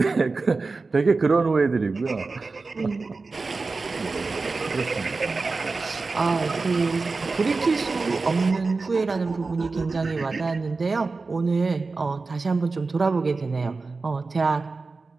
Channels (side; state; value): left; quieter; 3.9 dB